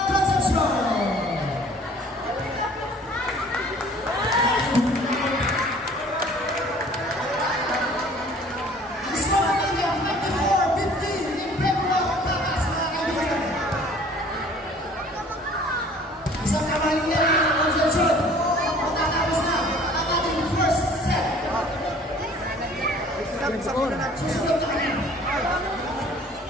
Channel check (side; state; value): both; normal; correlation 0.52